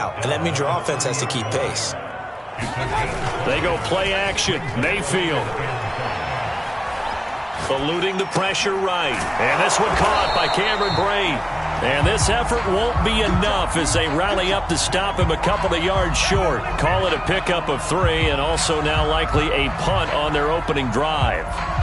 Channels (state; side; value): identical; both; correlation 1.00